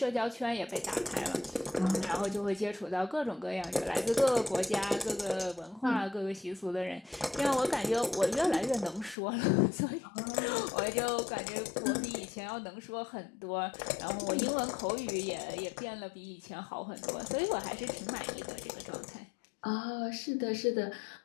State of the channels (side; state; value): right; drops out; at 9.2 s